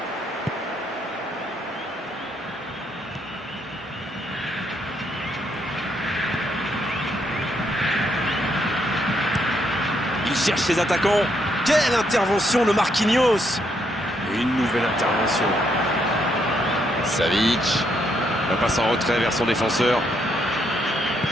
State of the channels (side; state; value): both; normal; correlation 0.75